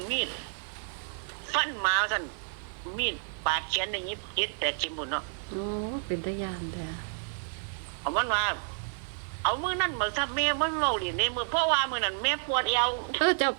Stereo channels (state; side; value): silent; left; 58 dB below the other